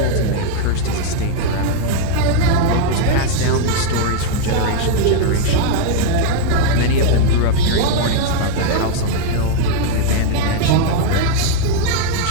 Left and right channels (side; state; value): both; different; correlation 0.00